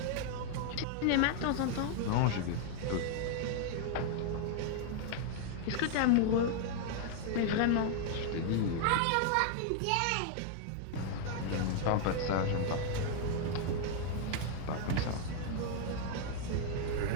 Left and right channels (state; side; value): different; both; correlation 0.00